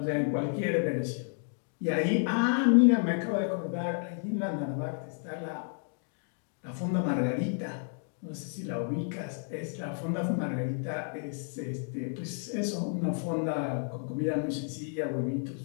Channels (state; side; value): silent; right; 57 dB below the other